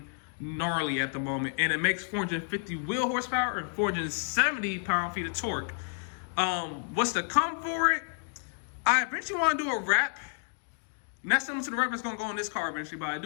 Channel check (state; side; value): silent; right; digital silence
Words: gnarly at the moment, and it makes 450 wheel horsepower and 470 pound-feet of torque. What's to come for it? I eventually want to do a wrap. Not similar to the wrap that's going to go on this car eventually, but I